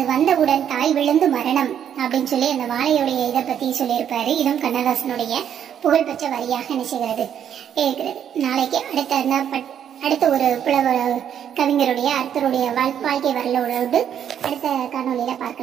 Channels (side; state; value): left; quieter; 9.2 dB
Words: வந்தவுடன் தாய் விழுந்து மரணம் அப்படின்னு சொல்லி அந்த வாழையுடைய இதை பத்தி சொல்லியிருப்பாரு. இதுவும் கண்ணதாசனுடைய புகழ்பெற்ற வரியாக நினைச்சுகிறது இருக்கிறது. நாளைக்கு அடுத்த ஒரு புலவர் கவிஞருடைய அர்த்தருடைய வாழ்க்கை வரலாறு அடுத்த காணொலியில